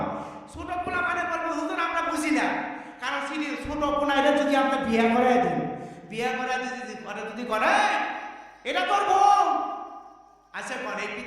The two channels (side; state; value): both; identical; correlation 1.00